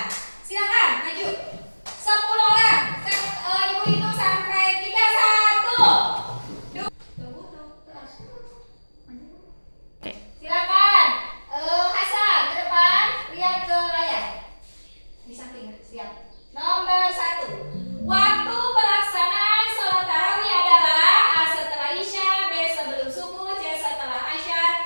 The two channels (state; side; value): inverted; both; correlation -1.00